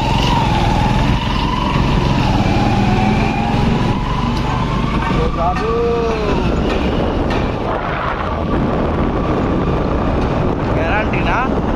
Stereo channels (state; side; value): identical; both; correlation 1.00